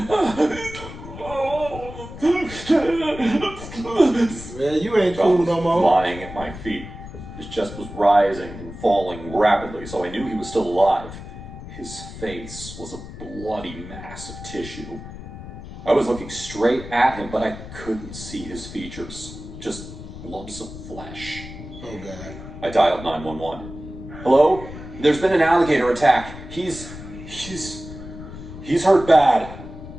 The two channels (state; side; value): noise; left; rumble, 12 dB below the sound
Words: you ain't cool no more. Lying at my feet. His chest was rising and falling rapidly, so I knew he was still alive. His face was a bloody mass of tissue. I was looking straight at him, but I couldn't see his features. Just lumps of flesh. Oh, God. I dialed 911. Hello? There's been an alligator attack. He's hurt bad.